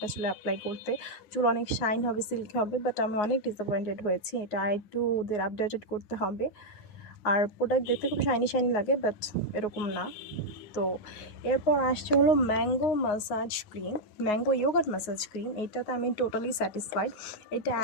চুলে অ্যাপ্লাই করতে, চুল অনেক শাইন হবে, সিল্কি হবে। বাট আমি অনেক ডিসঅ্যাপয়েন্টেড হয়েছি। এটা একটু ওদের আপডেটেড করতে হবে। আর প্রোডাক্ট দেখতে খুব শাইনি শাইনি লাগে, বাট এরকম না। তো এরপর আসছে হলো mango massage cream, mango yogurt massage cream. এটাতে আমি টোটালি স্যাটিসফাইড। এটা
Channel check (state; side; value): late; right; 9.5 ms